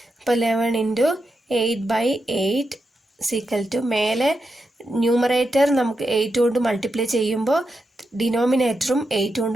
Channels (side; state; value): both; normal; correlation 0.87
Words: അപ്പോൾ 11 ഇൻറ്റു 8/8 ഈക്വൽ ടു മേലെ ന്യൂമറേറ്റർ നമുക്ക് 8 കൊണ്ട് മൾട്ടിപ്ലൈ ചെയ്യുമ്പോൾ ഡിനോമിനേറ്ററും 8